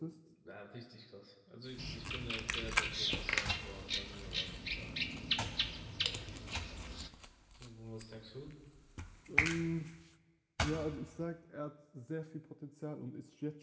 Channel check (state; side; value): identical; both; correlation 1.00